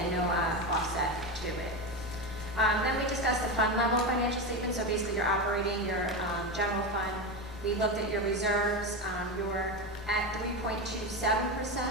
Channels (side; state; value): both; normal; correlation 0.17